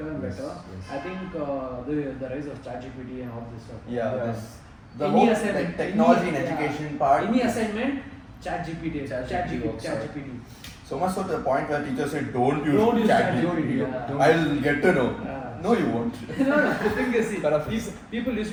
and Yes, better. yes. I think the rise of ChatGPT and all this stuff. Yeah, Yeah. the Any whole assignment, like, technology any- and yeah. education part. Any assignment, ChatGPT. ChatGPT works out. ChatGPT. So much so to the point where teachers say, don't use Don't use ChatGPT. ChatGPT, yeah. I'll get to know. Yeah. No, you won't. No, the thing is, see, Paraphrase. people used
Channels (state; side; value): identical; both; correlation 1.00